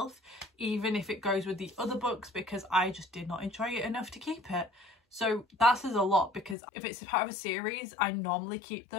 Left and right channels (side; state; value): right; drops out; at 6.6 s